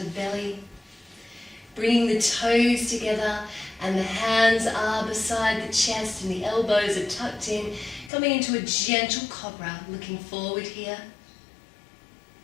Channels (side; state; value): right; drops out; at 8.1 s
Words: belly. Bringing the toes together and the hands are beside the chest and the elbows are tucked in. Coming into a gentle Cobra, looking forward here.